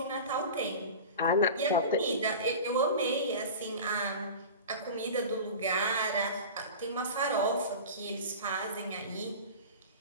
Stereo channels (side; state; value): both; inverted; correlation -0.33